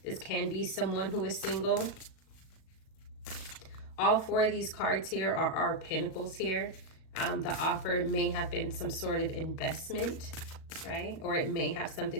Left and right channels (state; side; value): late; right; 37 ms